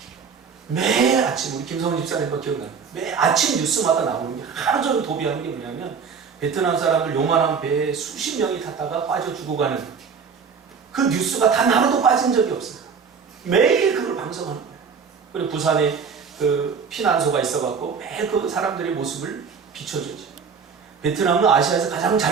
매일 아침 우리 김성훈 집사님과 기억나요. 매일 아침 뉴스마다 나오는 게 하루 종일 도비하는 게 뭐냐면 베트남 사람들 요만한 배에 수십 명이 탔다가 빠져 죽어가는 그 뉴스가 단 하루도 빠진 적이 없어요. 매일 그걸 방송하는 거예요. 그리고 부산에 그 피난소가 있어갖고 매일 그 사람들의 모습을 비춰주죠. 베트남은 아시아에서 가장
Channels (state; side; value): quieter; left; 6.0 dB